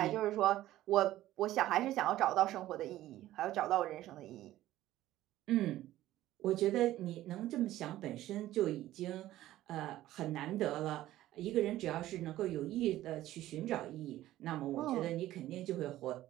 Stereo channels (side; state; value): left; quieter; 14.6 dB